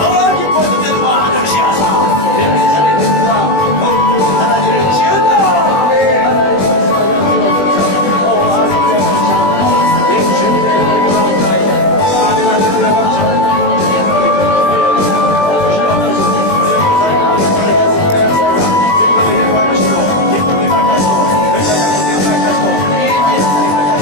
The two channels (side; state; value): right; late; 20 ms